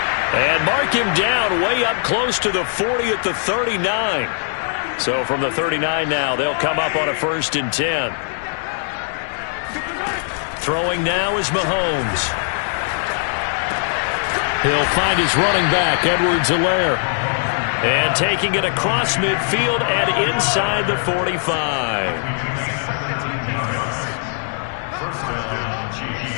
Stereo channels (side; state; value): right; silent; digital silence